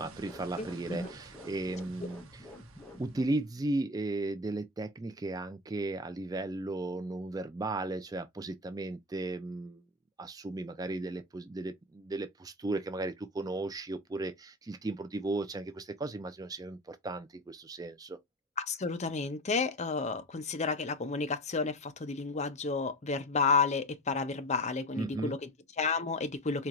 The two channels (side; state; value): both; normal; correlation 0.29